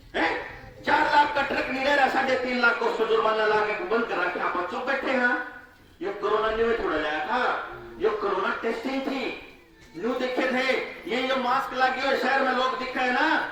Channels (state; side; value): identical; both; correlation 1.00